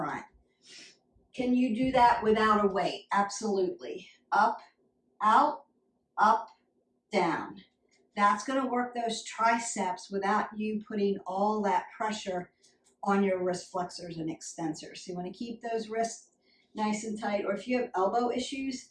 Can you do that without a weight? Absolutely. Up, out, up, down. That's going to work those triceps without you putting all that pressure on your wrist flexors and extensors. So you want to keep those wrists nice and tight. Or if you have elbow issues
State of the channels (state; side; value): identical; both; correlation 1.00